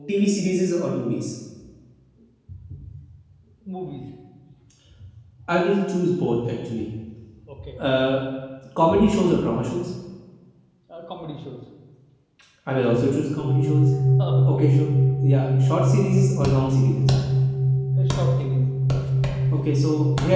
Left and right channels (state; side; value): identical; both; correlation 1.00